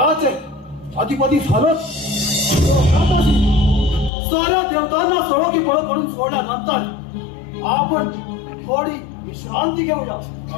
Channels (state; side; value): drops out; right; at 4.1 s